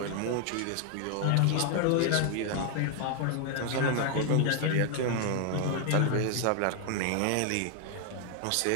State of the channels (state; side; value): different; both; correlation 0.00